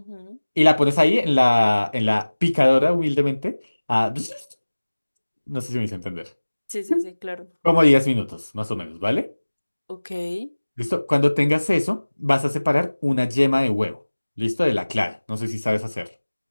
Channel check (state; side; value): inverted; both; correlation -1.00